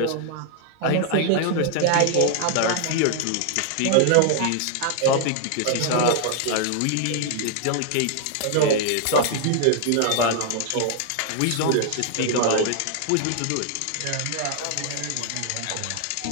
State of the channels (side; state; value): both; different; correlation 0.00